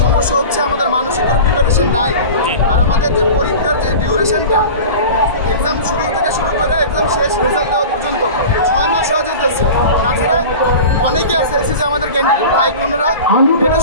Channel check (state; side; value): inverted; both; correlation -0.35